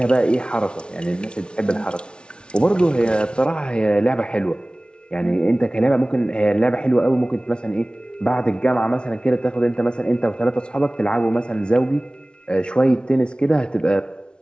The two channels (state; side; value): late; right; 0.056 ms